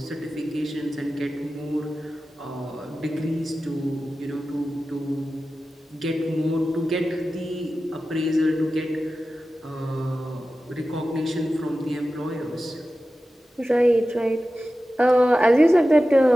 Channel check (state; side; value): normal; both; correlation 0.94